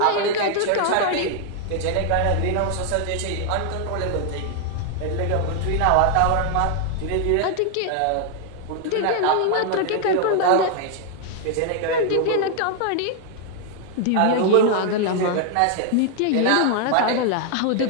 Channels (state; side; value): different; both; correlation 0.00